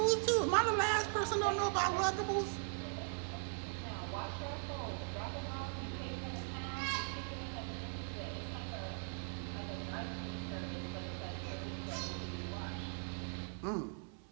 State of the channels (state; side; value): silent; left; 51 dB below the other